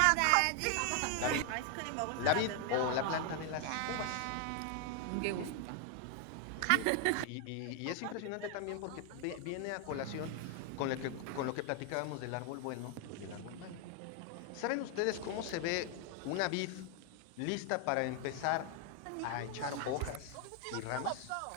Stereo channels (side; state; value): both; different; correlation 0.00